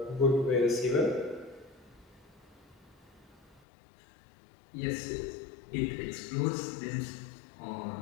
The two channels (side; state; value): right; drops out; at 3.6 s